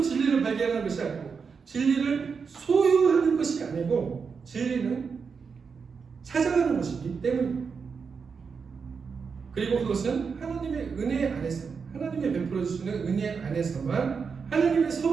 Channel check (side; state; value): left; quieter; 5.6 dB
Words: 진리를 발견하는 것이 아니고 진리를 소유하는 것이 아니고 진리는 찾아가는 것이기 때문입니다. 그리고 그것은 하나님의 은혜 안에서 하나님의 베풀어 주시는 은혜 안에서만 하나님의